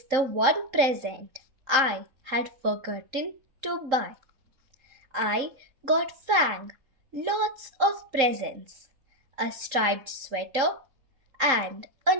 the one present I had forgotten to buy. I got Fang lots of presents, a striped sweater and a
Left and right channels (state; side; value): late; left; 3.8 ms